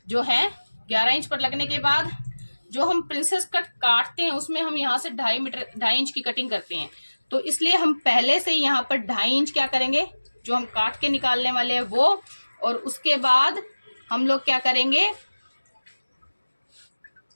जो है 11 इंच पर लगने के बाद जो हम प्रिंसेस कट काटते हैं उसमें हम यहाँ से 2.5 इंच की कटिंग करते हैं। तो इसलिए हम पहले से यहाँ पर 2.5 इंच क्या करेंगे, जो हम काट के निकालने वाले हैं वो, और उसके बाद हम लोग क्या करेंगे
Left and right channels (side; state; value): both; inverted; correlation -1.00